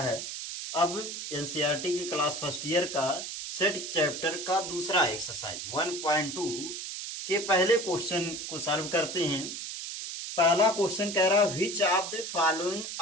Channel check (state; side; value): noise; right; hiss, 7 dB below the sound